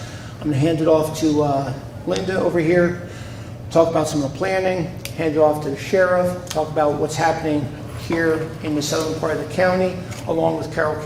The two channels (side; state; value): both; identical; correlation 1.00